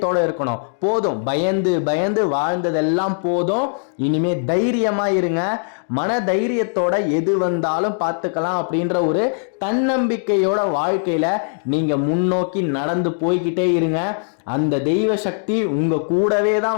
இருக்கணும். போதும், பயந்து பயந்து வாழ்ந்ததெல்லாம் போதும். இனிமே தைரியமா இருங்க. மன தைரியத்தோட எது வந்தாலும் பார்த்துக்கலாம் அப்படின்ற ஒரு தன்னம்பிக்கையோட வாழ்க்கையில நீங்க முன்னோக்கி நடந்து போய்கிட்டே இருங்க. அந்த தெய்வ சக்தி உங்க கூடவே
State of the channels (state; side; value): silent; right; digital silence